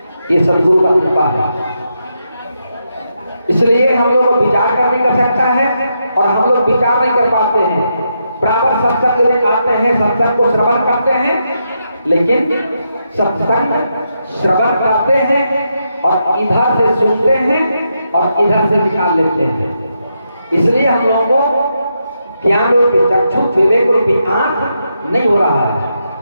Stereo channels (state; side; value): inverted; both; correlation -0.82